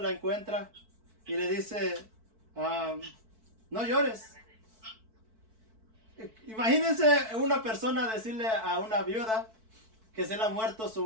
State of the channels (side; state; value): left; late; 4.6 ms